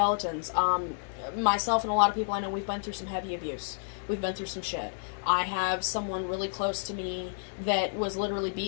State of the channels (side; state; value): right; silent; digital silence